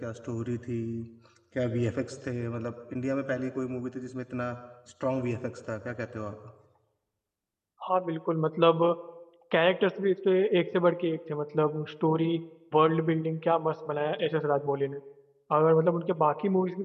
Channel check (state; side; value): identical; both; correlation 1.00